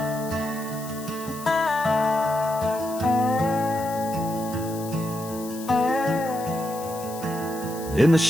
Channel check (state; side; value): noise; left; hiss, 14 dB below the sound